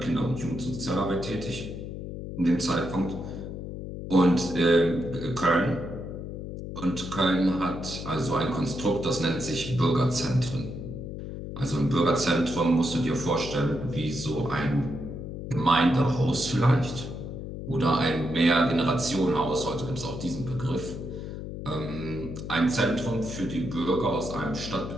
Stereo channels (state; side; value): noise; left; hum, 8 dB below the sound